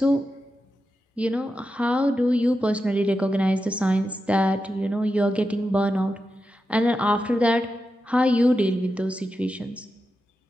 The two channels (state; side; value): normal; both; correlation 0.89